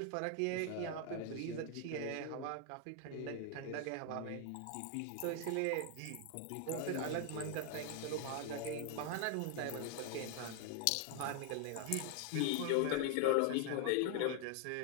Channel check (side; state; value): both; different; correlation 0.00